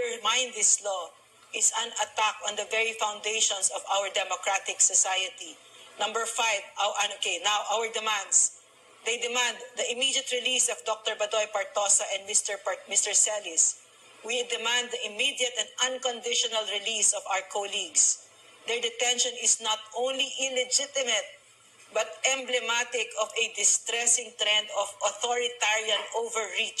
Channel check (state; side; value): identical; both; correlation 1.00